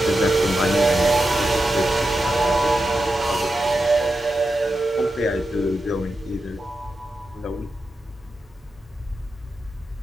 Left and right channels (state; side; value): normal; both; correlation 0.89